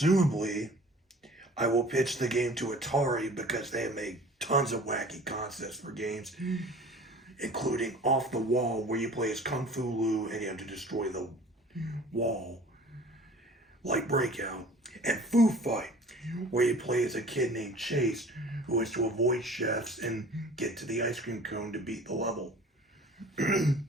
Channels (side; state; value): both; normal; correlation 0.46